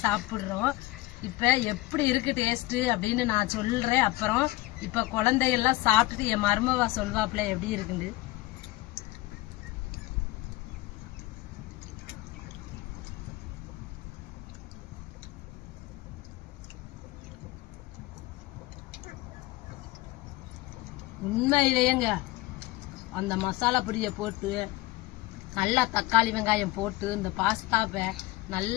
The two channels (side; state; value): right; quieter; 18.8 dB